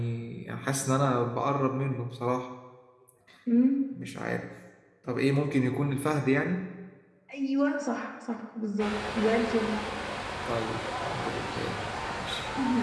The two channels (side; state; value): both; identical; correlation 1.00